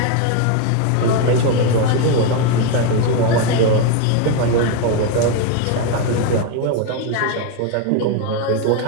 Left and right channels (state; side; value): different; both; correlation 0.02